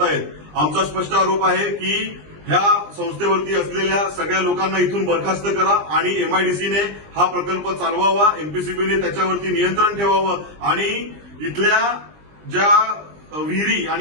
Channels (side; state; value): left; late; 20 ms